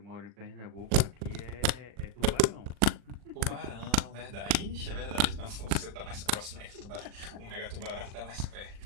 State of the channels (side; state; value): left; late; 40 ms